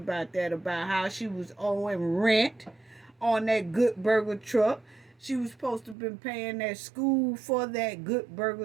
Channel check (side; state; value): left; drops out; at 6.0 s